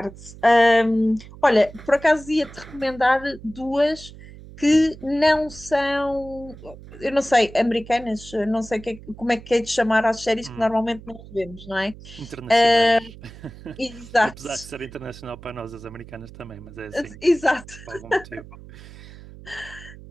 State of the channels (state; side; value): noise; right; hum, 17 dB below the sound